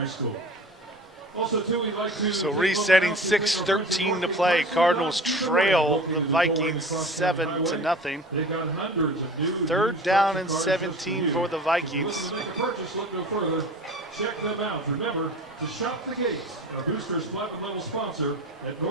School. Also, too, we'd like to so resetting 6:13 to play. Cardinals trail the Vikings 7-0. 3rd down and 17 for the Vikings. Look no further. Check them out. Remember to shop the gate. Our Boosters Platinum level sponsor at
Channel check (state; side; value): normal; both; correlation 0.38